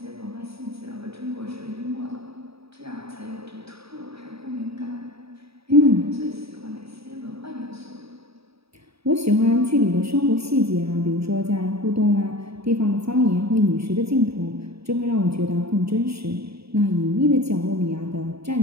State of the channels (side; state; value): left; late; 0.77 ms